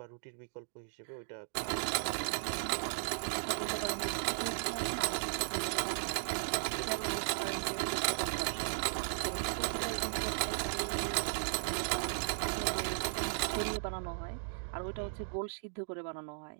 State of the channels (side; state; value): left; silent; digital silence